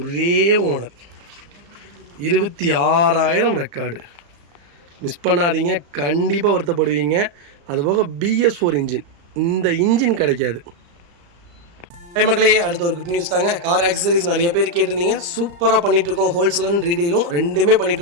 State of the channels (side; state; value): left; late; 34 ms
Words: ஓனர், 26,000 ரெக்கார்டு. மிஸ் பண்ணாதீங்க, கண்டிப்பாக வருத்தப்படுவீங்க. அதுபோக BS4 இன்ஜின், இந்த இன்ஜின் கிடைக்காது. மக்களே, அடுத்த ஒரு குட் நியூஸ் தாங்க. கார் ஆக்சசரிஸ் நிறைய பேர் கேட்டிருந்தீங்க. சூப்பராக பண்ணிகிட்ருக்கோம். ஹோல்சேல் அண்ட் ரீடெயிலும் ரெண்டுமே